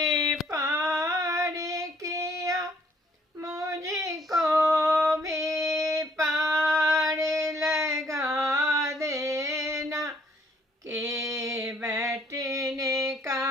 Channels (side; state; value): both; normal; correlation 0.64